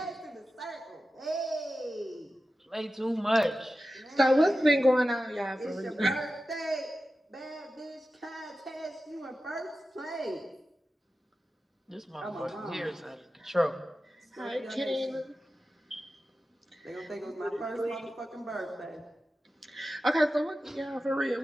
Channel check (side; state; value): both; normal; correlation 0.93